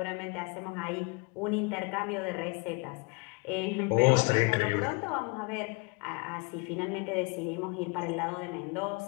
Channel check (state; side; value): quieter; right; 29.4 dB